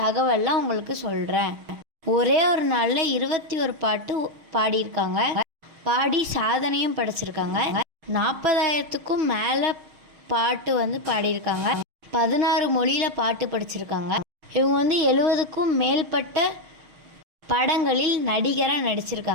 உங்களுக்கு சொல்கிறேன். ஒரே ஒரு நாளில் 21 பாட்டு பாடியிருக்காங்க. பாடி சாதனையும் படைச்சிருக்காங்க. 40,000க்கும் மேலே பாட்டு பாடியிருக்காங்க. 16 மொழியில் பாட்டு படிச்சிருக்காங்க. இவங்க 70க்கும் மேற்பட்ட படங்களில் நடிகராக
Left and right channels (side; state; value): left; late; 6.4 ms